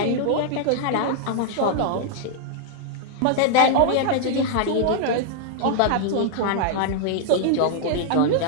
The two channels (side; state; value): both; different; correlation -0.01